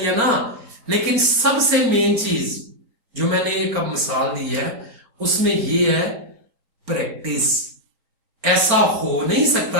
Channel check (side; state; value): left; late; 4.4 ms